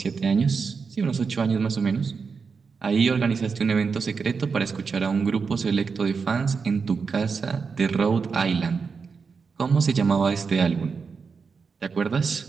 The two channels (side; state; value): left; quieter; 5.3 dB